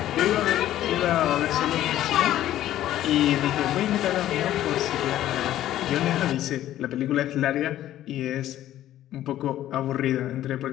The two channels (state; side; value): quieter; right; 13.0 dB